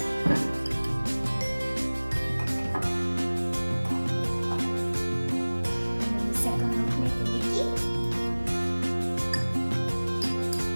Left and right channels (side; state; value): both; inverted; correlation -1.00